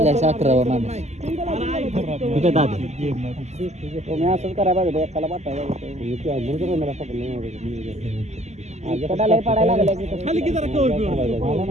11वा माणूस ठीक आहे दादा. तुम्ही असंच करायला पाहिजे एकाला पाठायला पडायला लागले खाली की जरा कवर बिवर.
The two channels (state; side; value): late; left; 0.33 ms